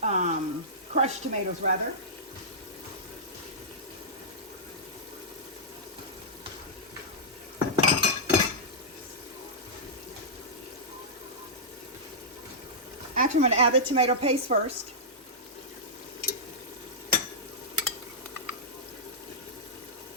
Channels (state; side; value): normal; both; correlation -0.13